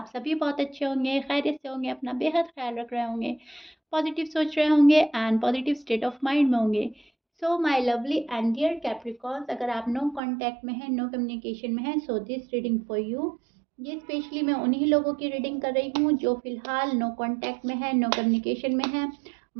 सभी बहुत अच्छे होंगे, खैरियत से होंगे, अपना बेहद ख्याल रख रहे होंगे, पॉजिटिव सोच रहे होंगे and positive state of mind में होंगे। So my lovely and dear Capricorns, अगर आप नो कांटेक्ट में हैं, नो कम्युनिकेशन में हैं, so this reading for you. ये स्पेशली मैं उन्हीं लोगों की रीडिंग कर रही हूँ जो फिलहाल नो कांटेक्ट में है, नो कम्युनिकेशन में है।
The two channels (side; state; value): left; drops out; at 10.2 s